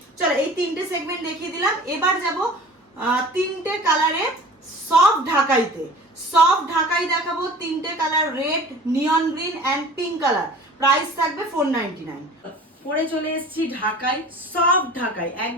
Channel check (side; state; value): both; normal; correlation 0.43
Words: চলো এই 3টে সেগমেন্ট দেখিয়ে দিলাম, এবার যাব 3টে কালারে সফট ঢাকাইতে। সফট ঢাকাই দেখাবো, 3টে colour, red, neon green and pink colour. Price থাকবে 499। পরে চলে এসেছি ঢাকাই, সফট ঢাকাই,